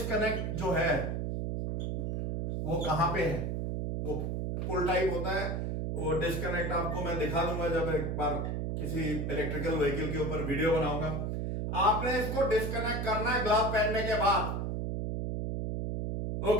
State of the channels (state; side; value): noise; right; hum, 1 dB below the sound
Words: जो है वो कहां पे है। वो पुल टाइप होता है, वो डिस्कनेक्ट आपको मैं दिखा दूंगा जब एक बार किसी इलेक्ट्रिकल व्हीकल के ऊपर वीडियो बनाऊंगा। आपने इसको डिस्कनेक्ट करना है ग्लव पहनने के बाद।